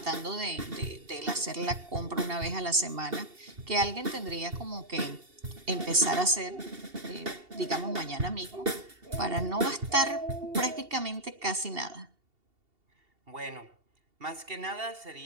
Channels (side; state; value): left; late; 2.7 ms